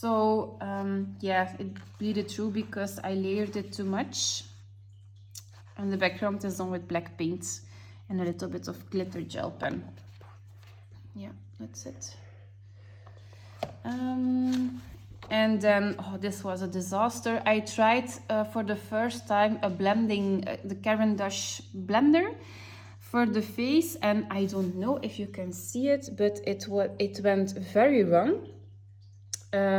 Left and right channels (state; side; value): identical; both; correlation 1.00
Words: yeah, it bleeded through because I layered it too much. And the background is done with black paint and a little bit of glitter gel pen. Yeah, that's it. And then, oh, this was a disaster. I tried for the first time a blending, the Caran d'Ache blender for the face, and I don't know if you can see it, but it went very wrong.